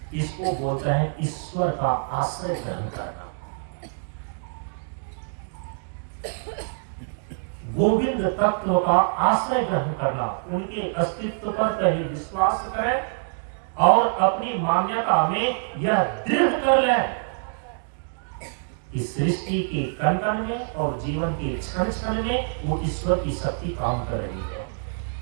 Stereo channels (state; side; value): silent; left; digital silence